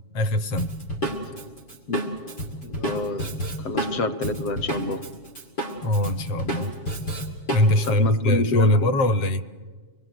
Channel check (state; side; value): late; right; 7.3 ms